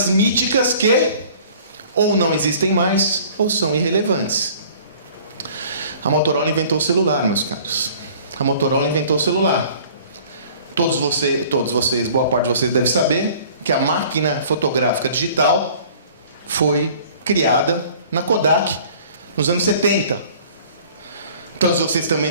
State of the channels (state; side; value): inverted; both; correlation -0.50